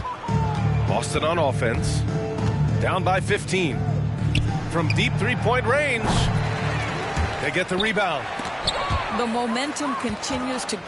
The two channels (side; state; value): both; identical; correlation 1.00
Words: Boston on offense. Down by 15. From deep three-point range. They get the rebound. The momentum continues to